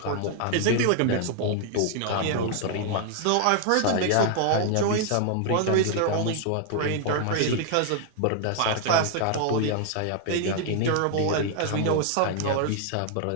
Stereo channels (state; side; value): different; both; correlation 0.00